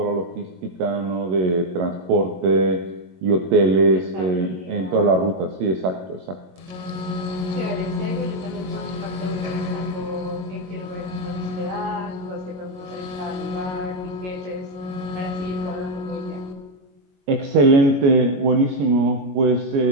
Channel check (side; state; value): left; late; 22 ms